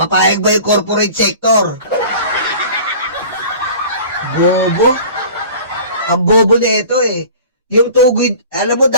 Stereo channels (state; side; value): inverted; both; correlation -0.43